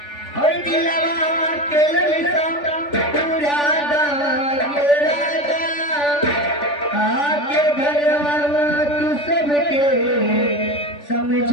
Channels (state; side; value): late; right; 3.4 ms